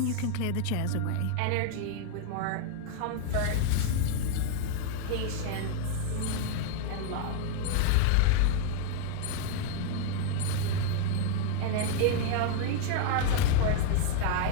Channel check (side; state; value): both; different; correlation 0.00